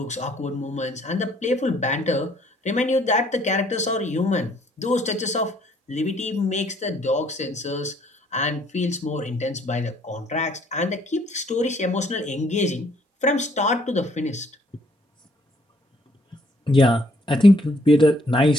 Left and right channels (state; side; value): normal; both; correlation 0.64